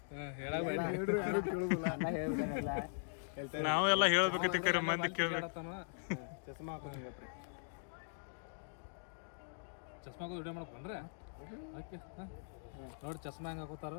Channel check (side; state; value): right; silent; digital silence